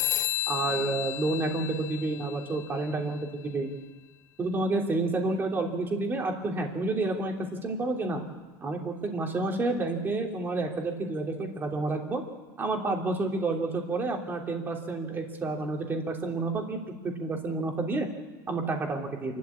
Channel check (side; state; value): both; normal; correlation 0.53